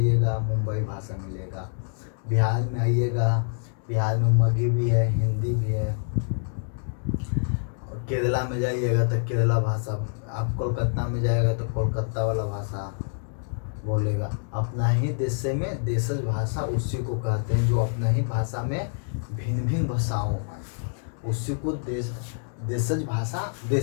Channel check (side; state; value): right; silent; digital silence